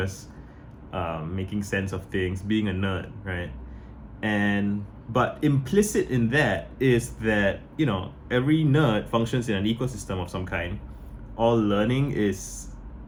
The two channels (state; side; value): identical; both; correlation 1.00